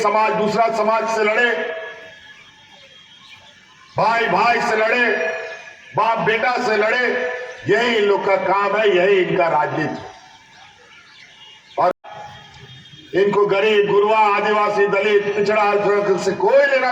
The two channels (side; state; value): both; identical; correlation 1.00